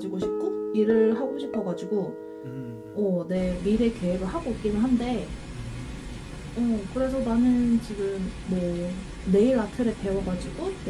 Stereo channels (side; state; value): both; identical; correlation 1.00